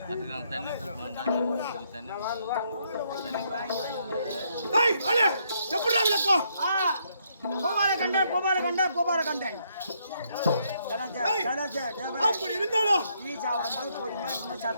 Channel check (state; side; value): inverted; both; correlation -0.73